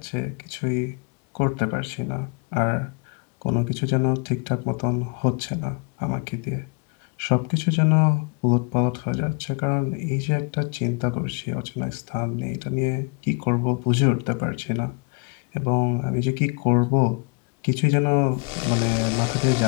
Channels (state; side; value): quieter; right; 33.5 dB